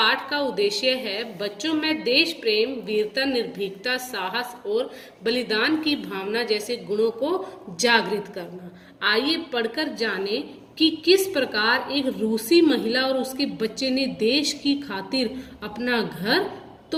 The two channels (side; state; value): both; identical; correlation 1.00